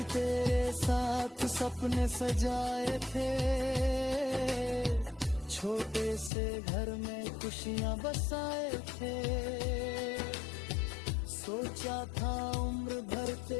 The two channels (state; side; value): drops out; right; at 6.3 s